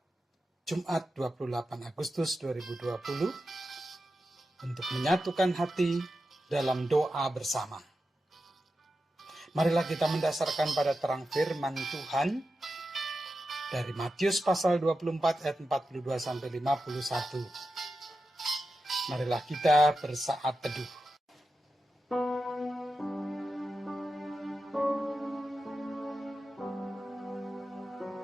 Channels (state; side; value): normal; both; correlation 0.90